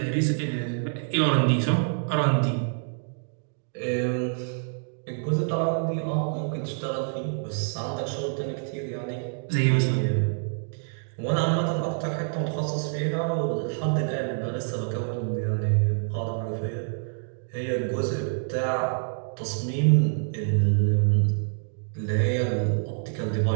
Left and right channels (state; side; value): silent; left; digital silence